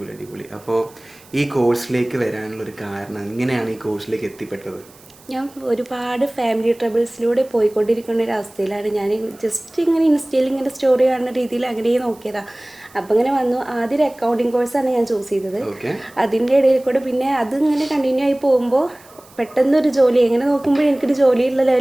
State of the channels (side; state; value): right; noise; hiss, 26 dB below the sound